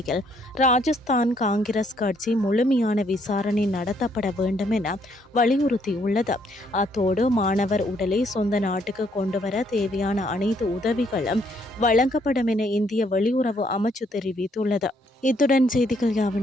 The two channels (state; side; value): normal; both; correlation 0.69